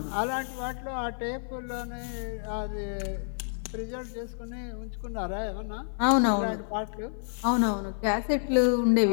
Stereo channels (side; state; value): right; silent; 58 dB below the other